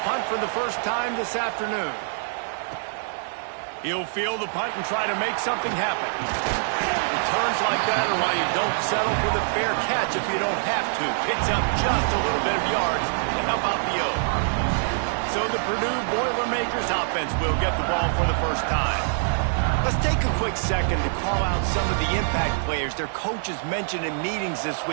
punt for the first time this afternoon. He'll field the punt and try to make something happen. Returns like that are why you don't settle for the fair catch if you don't have to. Picks up just a little bit of yards to help out the O. So the Purdue Boilermakers offense will get the ball for the first time. Let's take a quick second to call out some of the impact players their coaches mentioned in meetings this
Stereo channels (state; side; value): silent; left; digital silence